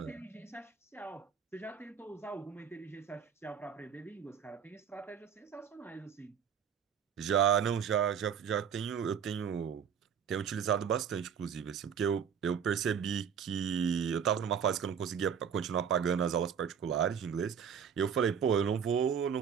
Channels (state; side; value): quieter; left; 7.6 dB